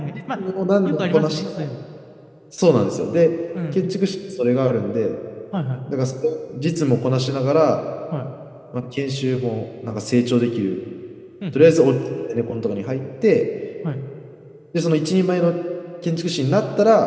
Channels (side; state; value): both; identical; correlation 1.00